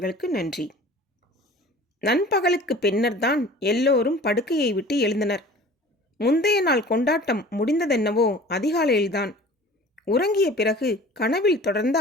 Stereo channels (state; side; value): normal; both; correlation 0.44